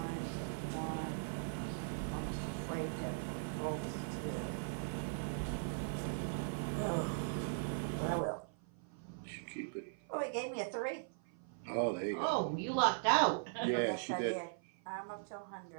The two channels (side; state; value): left; silent; 51 dB below the other